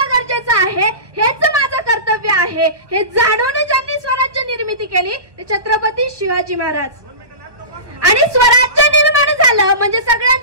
गरजेचं आहे. हेच माझं कर्तव्य आहे. हे जाणून ज्यांनी स्वराज्य निर्मिती केली ते छत्रपती शिवाजी महाराज. आणि स्वराज्य निर्माण झालं म्हणजे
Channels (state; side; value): late; left; 1.2 ms